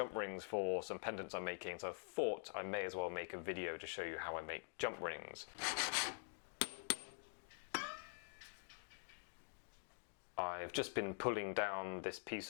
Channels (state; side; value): silent; right; digital silence